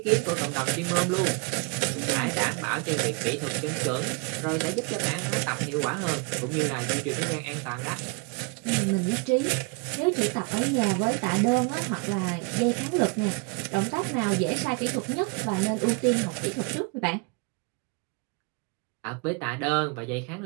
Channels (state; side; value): quieter; left; 31.8 dB